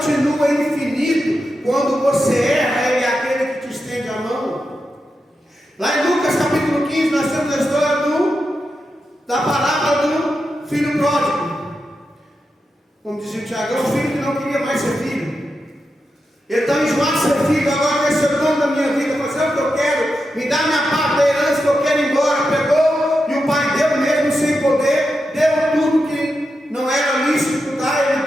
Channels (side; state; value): both; normal; correlation 0.88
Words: infinito. Quando você erra, Ele é aquele que te estende a mão. Lá em Lucas capítulo 15, nós temos a história da parábola do filho pródigo. Como dizia o Tiago, é um filho que não queria mais ser filho. Ele está enjoado de ser filho, agora quer ser dono da minha vida, fazer o que eu quero, me dá minha parte da herança que eu quero ir embora. Pegou e o pai deu mesmo sem poder, deu tudo que não era lícito dar,